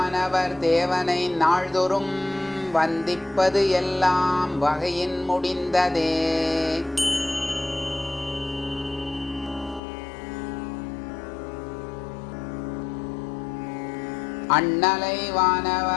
தேவனை நாள்தொறும், வந்திப்பது எல்லாம் வகையின் முடிந்ததே. அண்ணலை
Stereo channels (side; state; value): right; drops out; at 9.8 s